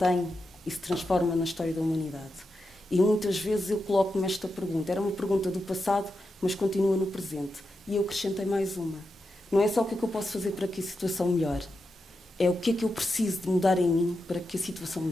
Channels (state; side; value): normal; both; correlation 0.88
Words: e se transforma na história da humanidade. E muitas vezes eu coloco-me esta pergunta, era uma pergunta do passado, mas continua no presente. E eu acrescentei mais uma. Não é só o que é que eu posso fazer para que a situação melhore, é o que é que eu preciso de mudar em mim para que a situação